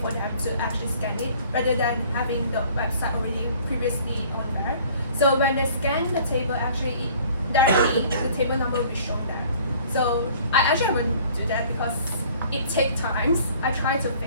for them to actually scan it rather than having the website already previously on there. So when they scan the table, actually directly the table number will be shown there. So I actually wouldn't do that because it takes time. I try to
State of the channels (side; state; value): both; inverted; correlation -0.53